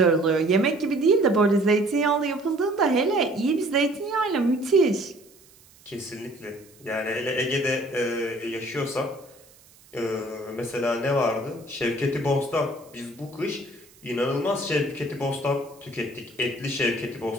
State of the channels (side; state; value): right; noise; hiss, 27 dB below the sound